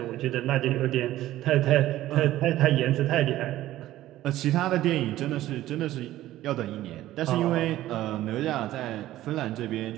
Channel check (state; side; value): quieter; left; 14.7 dB